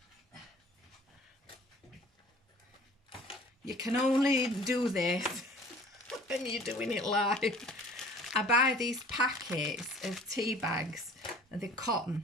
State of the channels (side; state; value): both; normal; correlation 0.49